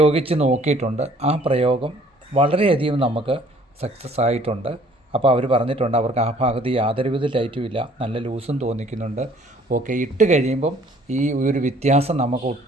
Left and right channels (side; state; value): both; normal; correlation 0.57